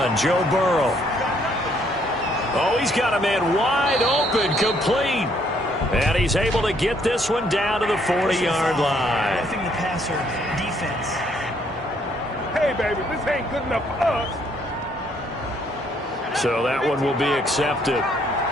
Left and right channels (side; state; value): both; normal; correlation 0.68